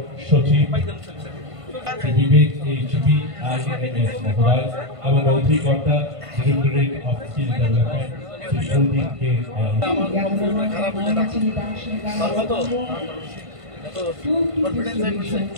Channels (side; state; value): left; late; 1.5 ms